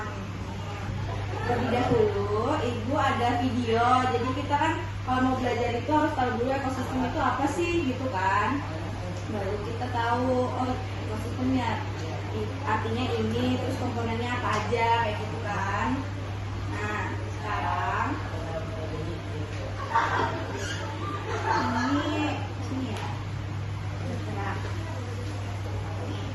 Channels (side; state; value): both; identical; correlation 1.00